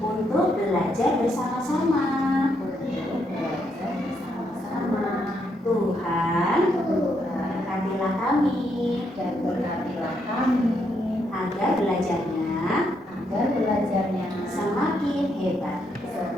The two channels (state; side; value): normal; both; correlation 0.77